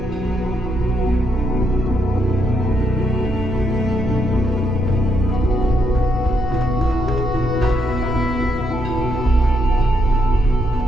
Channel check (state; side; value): normal; both; correlation 0.77